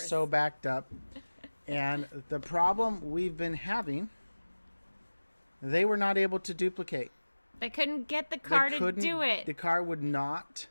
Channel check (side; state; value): both; inverted; correlation -1.00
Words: backed up. And the problem we've been having, they were not able to duplicate. They couldn't get the car to do it. The car would not